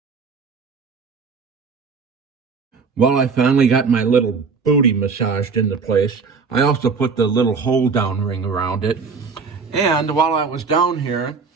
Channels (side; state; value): left; quieter; 5.1 dB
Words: Well, I finally got my little booty massaged into place. I also put the little hold-down ring around it. And while I was down here,